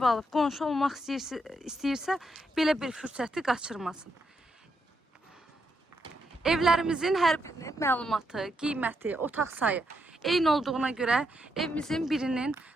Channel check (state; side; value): normal; both; correlation 0.80